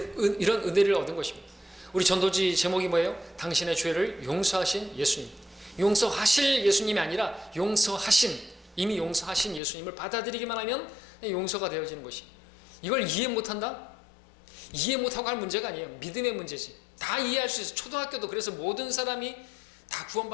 얻은 것입니다. 우리 전도지 제목이 뭐예요? 당신의 죄를 용서하신 예수님. 용서하실 예수님이 아니라 이미 용서하신 예수님을 받아들이기만 하면 용서가 되어지는 것이. 이걸 이해 못한다? 이해 못하고 할 문제가 아니에요. 믿음의 문제지. 다 이해할 수 있어요. 초등학교도 그래서 모든 사람이 다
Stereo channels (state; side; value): drops out; right; at 9.6 s